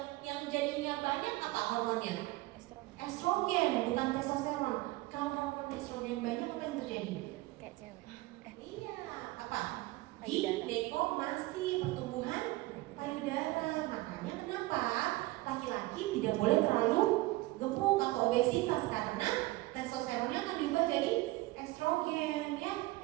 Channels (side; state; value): left; quieter; 20.1 dB